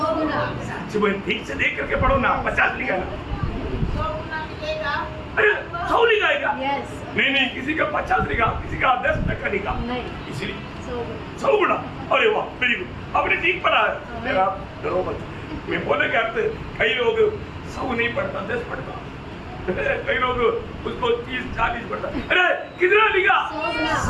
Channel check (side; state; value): both; identical; correlation 1.00